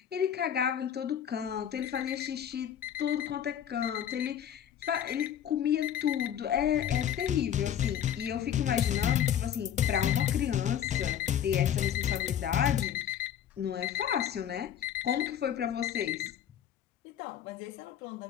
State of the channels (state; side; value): quieter; right; 9.7 dB